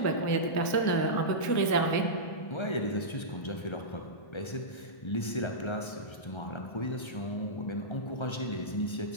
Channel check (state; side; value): late; right; 1.3 ms